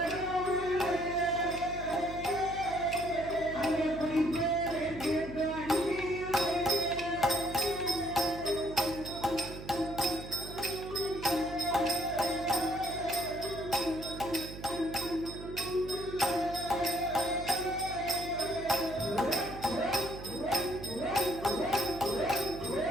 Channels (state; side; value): noise; right; hum, 12 dB below the sound